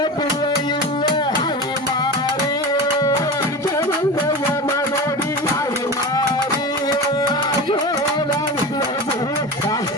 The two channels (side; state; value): both; normal; correlation 0.28